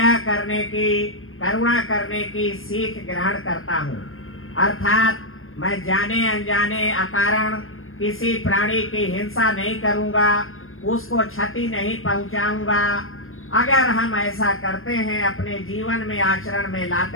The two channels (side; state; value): right; late; 0.60 ms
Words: करने की, करुणा करने की सीख ग्रहण करता हूँ। अर्थात मैं जाने अनजाने अकारण किसी प्राणी की हिंसा नहीं करूँगा, उसको क्षति नहीं पहुँचाऊँगा। अगर हम ऐसा करते हैं, अपने जीवन में आचरण में